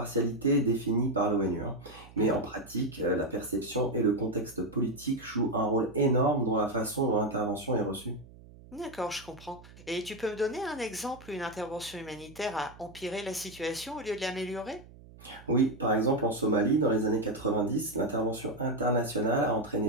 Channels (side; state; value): right; noise; hum, 20 dB below the sound